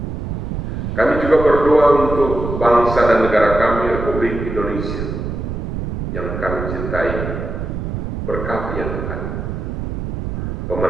Kami juga berdoa untuk bangsa dan negara kami, Republik Indonesia, yang kami cintai. Berkati ya Tuhan.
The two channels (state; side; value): noise; right; rumble, 5 dB below the sound